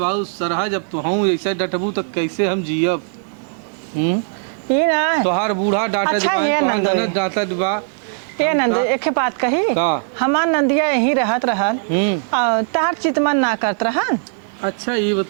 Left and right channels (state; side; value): silent; left; digital silence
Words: सरहज अब तो हूँ ऐसे डटबू तो कैसे हम जियब। ई ना तोहार बूढ़ा डांटा अच्छा, ये दिबा नंदोई। ननद डांटा दिबा। ए नंद एक बात कही का? हमार नंदिया यही रहत रहल और तार चितमन ना करत रहन। अच्छा ये